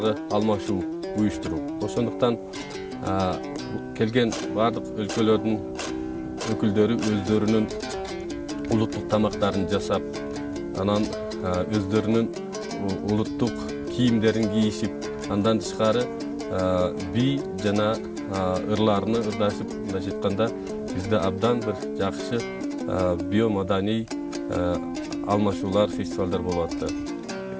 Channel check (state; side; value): identical; both; correlation 1.00